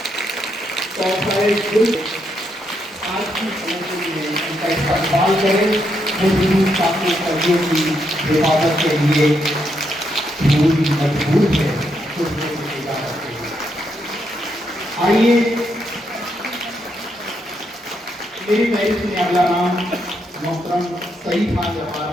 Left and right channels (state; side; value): normal; both; correlation 0.79